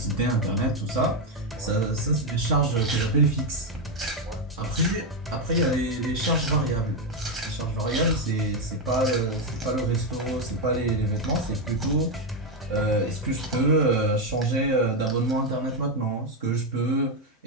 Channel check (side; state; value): both; normal; correlation 0.05